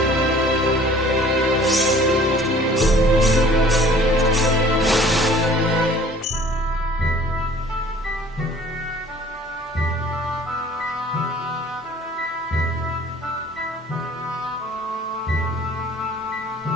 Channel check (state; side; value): normal; both; correlation 0.51